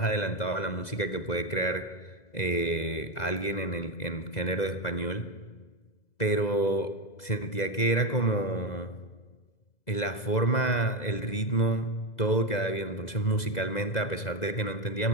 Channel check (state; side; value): late; right; 2.0 ms